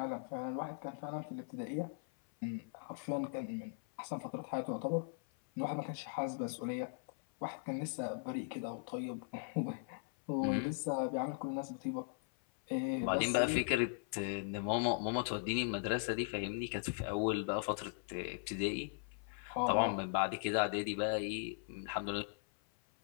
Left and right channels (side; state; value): right; silent; 52 dB below the other